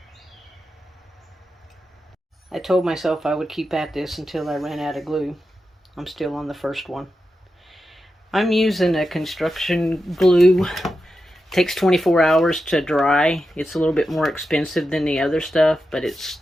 I told myself I would keep at this until I ran out of glue. I'm still on the first one. I'm using a construction glue. It takes 24 hours to dry. It's a little bit more expensive than the other stuff, but it's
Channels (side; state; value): both; normal; correlation 0.90